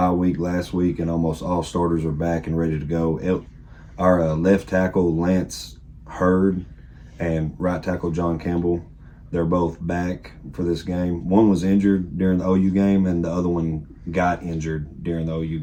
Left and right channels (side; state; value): both; identical; correlation 1.00